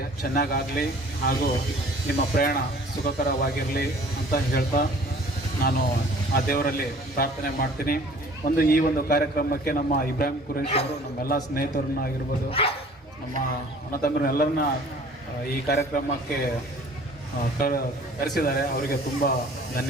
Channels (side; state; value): both; normal; correlation 0.50